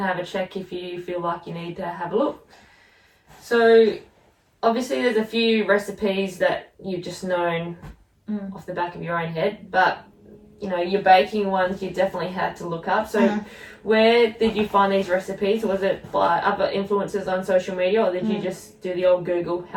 have a check if you feel like you need to have a look. So obviously there's a few recipes that you've just known off the back of your own head, but your baking ones you definitely had to look up. So where did you find these recipes? Was it by other influencers on social media, or did you just do the old Google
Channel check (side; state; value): both; identical; correlation 1.00